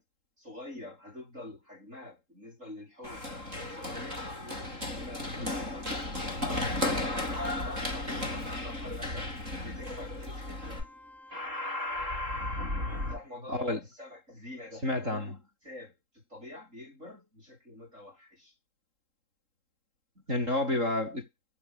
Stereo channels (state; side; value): late; left; 3.7 ms